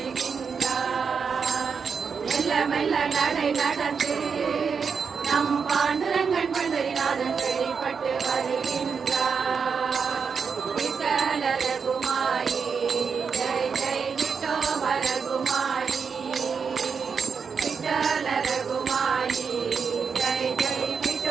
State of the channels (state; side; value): quieter; left; 5.9 dB